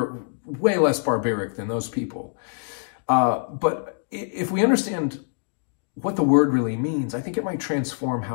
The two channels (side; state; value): right; silent; digital silence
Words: way less barbaric than those people. But if we understand what the word really means, I think it might transform